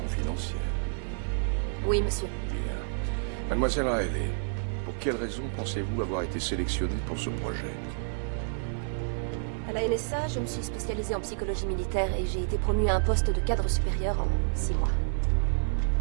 Oui, monsieur. Bien. Mademoiselle Riley, pour quelle raison pensez-vous avoir été sélectionnée pour ce projet? À la NSA, je me suis spécialisée en psychologie militaire et j'ai été promue à un poste de cadre supérieur en 6 mois.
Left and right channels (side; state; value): left; silent; digital silence